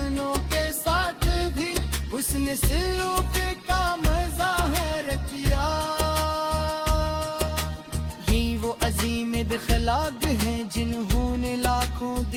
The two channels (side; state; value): both; identical; correlation 1.00